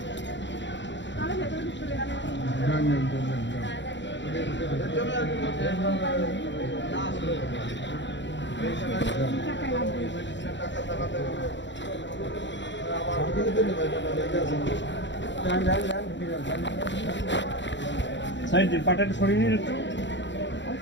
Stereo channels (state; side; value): late; right; 0.53 ms